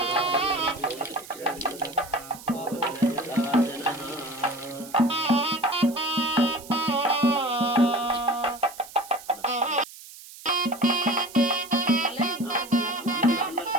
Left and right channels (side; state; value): right; noise; hiss, 17 dB below the sound